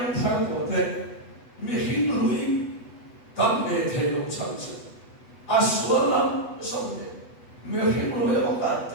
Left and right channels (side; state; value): right; late; 8.1 ms